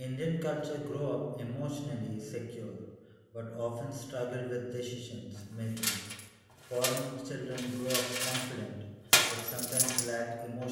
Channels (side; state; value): both; identical; correlation 1.00